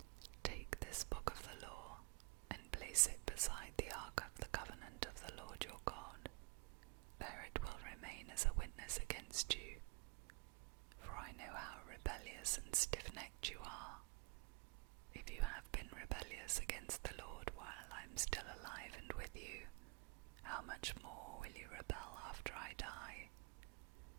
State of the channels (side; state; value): left; quieter; 28.1 dB